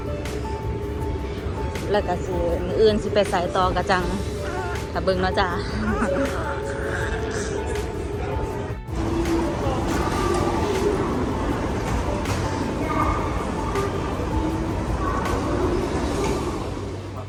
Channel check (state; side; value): identical; both; correlation 1.00